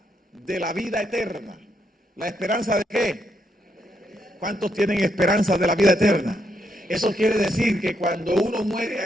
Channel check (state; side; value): normal; both; correlation 0.78